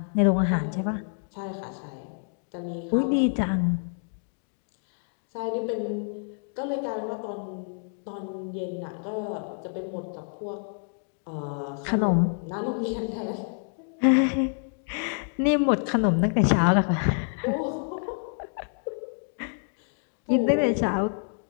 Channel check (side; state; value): right; silent; 59 dB below the other